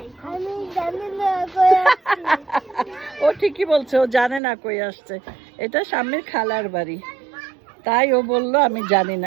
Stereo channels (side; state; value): left; drops out; at 4.4 s